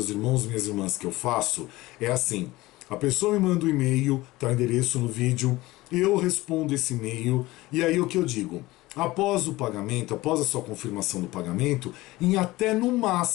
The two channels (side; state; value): right; quieter; 19.1 dB